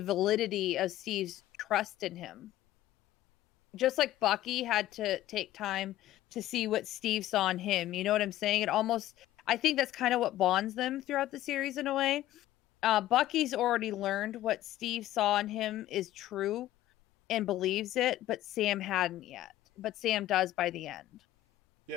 validity of Steve's trust in him. Just like Bucky had to take time to see what Steve saw in him. You know what I'm saying? I think that's kind of what bonds them throughout the series in a way. Bucky's already learned what Steve saw in him is true and believes it, but Sam hadn't yet. But Sam does by the end.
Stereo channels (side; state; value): right; quieter; 14.2 dB